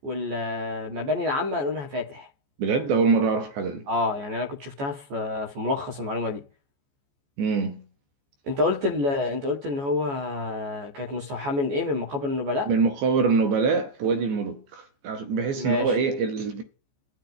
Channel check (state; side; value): late; left; 14 ms